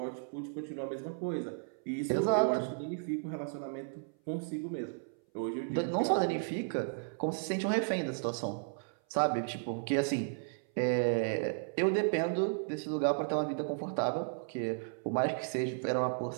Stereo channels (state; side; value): silent; left; 55 dB below the other